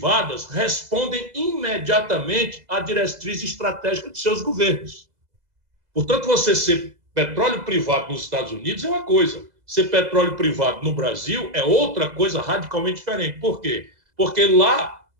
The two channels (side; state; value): left; late; 2.0 ms